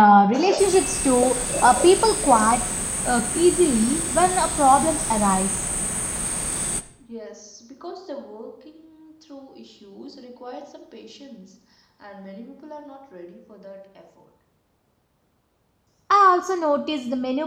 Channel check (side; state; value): both; identical; correlation 1.00